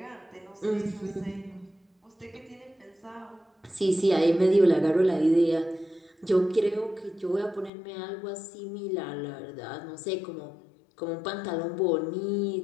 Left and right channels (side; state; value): right; drops out; at 7.7 s